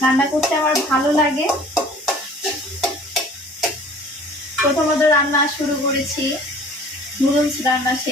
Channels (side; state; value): both; normal; correlation 0.49